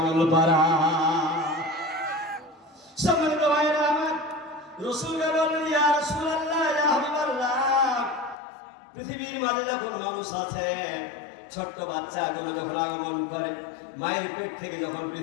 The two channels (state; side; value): drops out; right; at 8.3 s